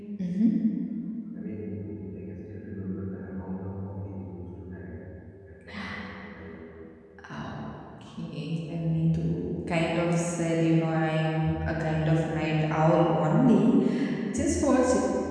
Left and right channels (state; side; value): identical; both; correlation 1.00